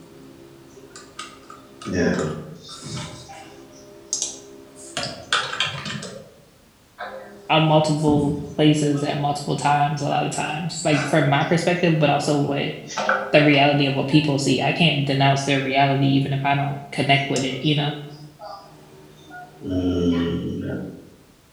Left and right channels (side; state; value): both; identical; correlation 1.00